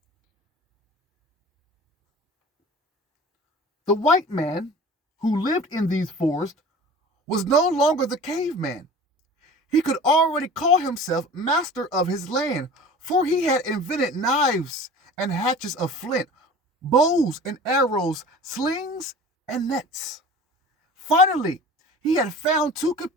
The white man who lived in these forests was no longer the caveman. He could already call himself master of his land, for he had invented knives and hatchets of flint, bows and arrows, slings and nets. Finally, he had found two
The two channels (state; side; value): normal; both; correlation 0.41